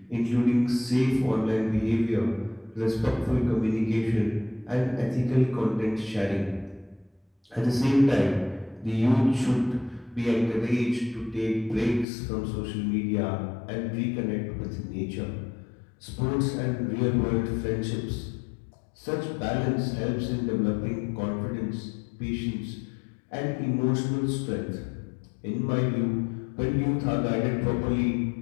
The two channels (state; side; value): drops out; right; at 12.1 s